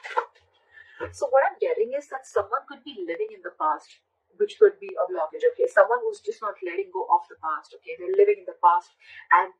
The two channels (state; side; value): identical; both; correlation 1.00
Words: So what I'm getting is that someone could be living in the past, which could be a blockage, okay? Someone who's just not letting go of the past, okay? They're living in the past, and